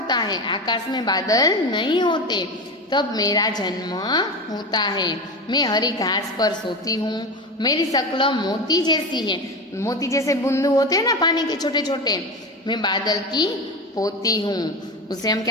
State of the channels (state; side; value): normal; both; correlation 0.23